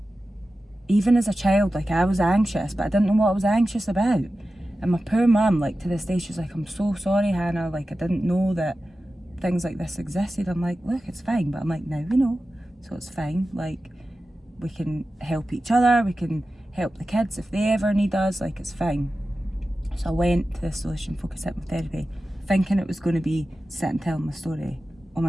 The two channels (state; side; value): normal; both; correlation 0.94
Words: even as a child, like, I was anxious, but I didn't know what I was anxious about. And my poor mum, like, to this day, she's like, I'm so sorry, Hannah, like, I didn't know that things like this existed. I'm like, look, it's fine. But I'm like, now we know, so it's fine. Like, we can help each other, we can help the kids if they ever need us, like, it's fine. So I went to this solution focused hypnotherapy thinking it was going to be sit and tell my story. Oh